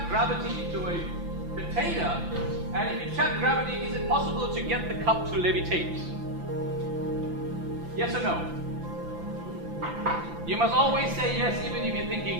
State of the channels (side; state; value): left; late; 5.9 ms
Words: gravity into a container? And if you trap gravity, is it possible to get the cup to levitate? Yes or no? You must always say yes, even if you're